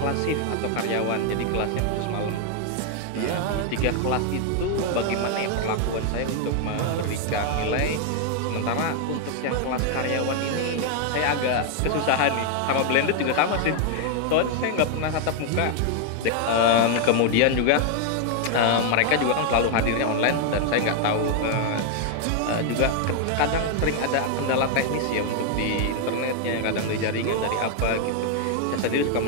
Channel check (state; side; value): different; both; correlation 0.00